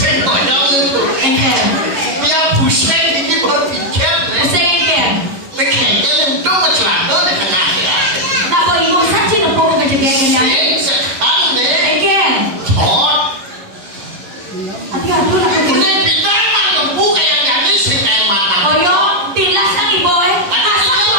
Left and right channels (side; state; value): left; late; 11 ms